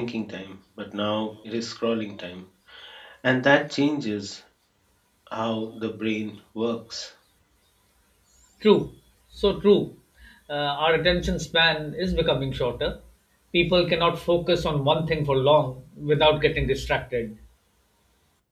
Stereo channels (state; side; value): identical; both; correlation 1.00